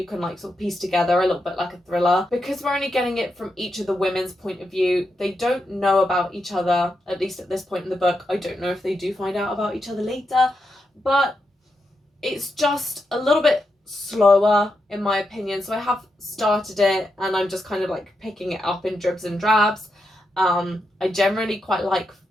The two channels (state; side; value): normal; both; correlation 0.85